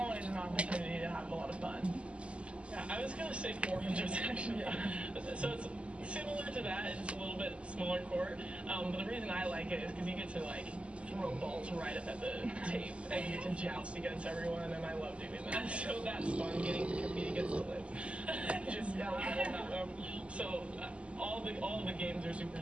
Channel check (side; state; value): left; late; 0.057 ms